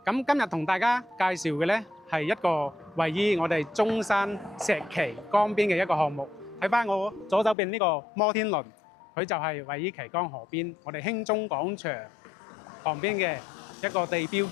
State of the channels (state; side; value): drops out; right; at 7.6 s